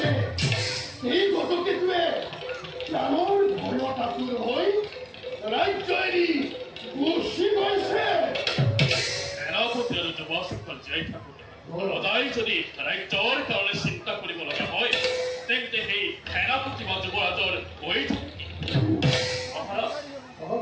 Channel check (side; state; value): both; identical; correlation 1.00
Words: এই গজকেতুৱে প্ৰাণৰ ভয়ত আতুৰ হৈ ৰাজ্য এৰি গুচি গৈছে। সেনাপতি আৰু যুৱসকল জীয়াই থাকোঁতে সদায় যদি ৰাজ্যৰ কাৰণে চিন্তা কৰিব লগা হয় তেন্তে সেই সেনাপতি বা যুৱৰাজৰ হৈ থাকে। মহাৰাজ